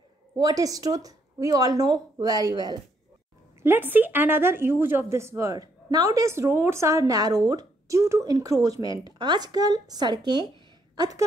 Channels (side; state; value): both; normal; correlation 0.73